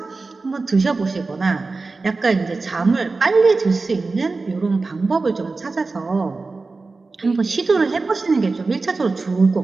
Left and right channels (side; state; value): left; quieter; 3.8 dB